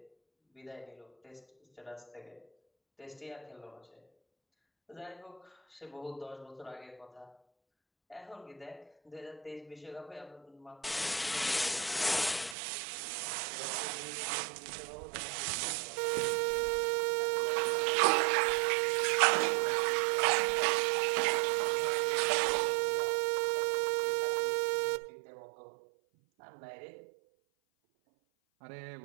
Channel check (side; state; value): left; drops out; at 12.6 s